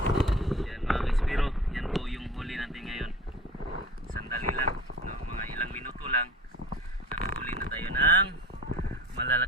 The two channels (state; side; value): normal; both; correlation 0.39